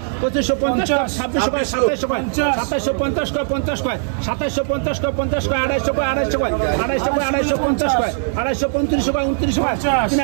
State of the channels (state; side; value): silent; left; digital silence